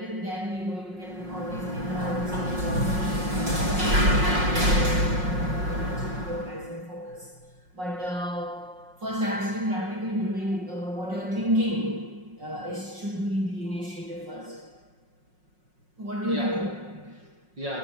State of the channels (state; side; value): late; left; 5.5 ms